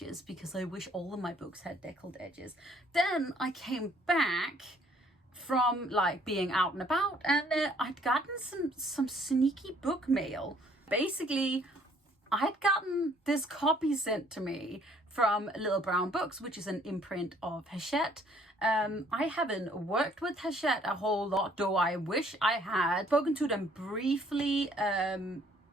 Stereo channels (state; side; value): normal; both; correlation 0.61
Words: because I wish all of my books had deckled edges. Then I came back from like being out and about, and I'd gotten some sneaky book mail. Basically, I'd gotten this copy sent to me from Little Brown Books, which is an imprint of Hachette. I haven't worked with Hachette a whole lot, though I wish I had. Spoken to them briefly